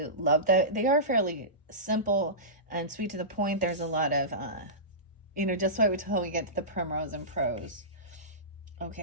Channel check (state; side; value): normal; both; correlation -0.19